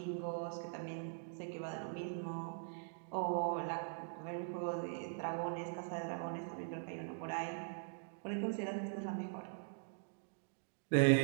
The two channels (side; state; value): left; silent; digital silence